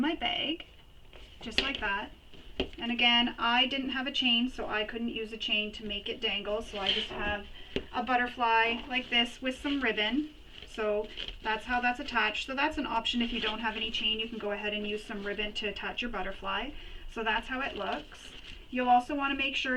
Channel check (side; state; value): both; identical; correlation 1.00